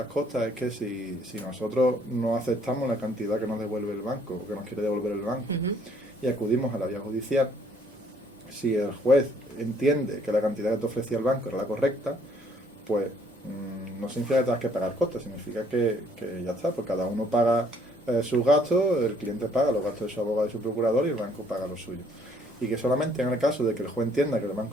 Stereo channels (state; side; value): normal; both; correlation 0.63